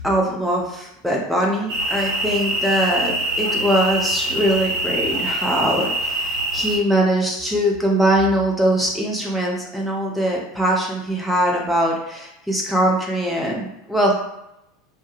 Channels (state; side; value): normal; both; correlation 0.52